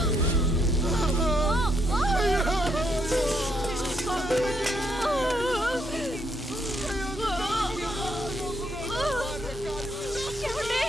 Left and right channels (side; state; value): both; normal; correlation 0.75